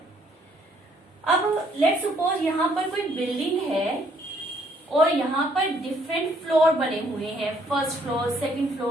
अब लेट्स सपोज यहाँ पर कोई बिल्डिंग है और यहाँ पर डिफरेंट फ्लोर बने हुए हैं, first floor, second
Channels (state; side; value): normal; both; correlation 0.66